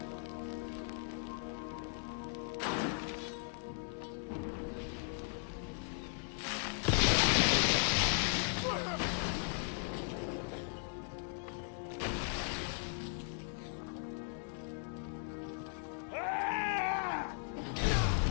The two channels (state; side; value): silent; right; 53 dB below the other